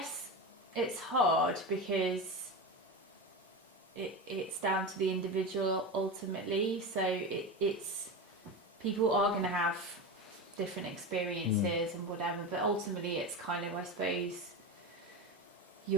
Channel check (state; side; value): normal; both; correlation 0.22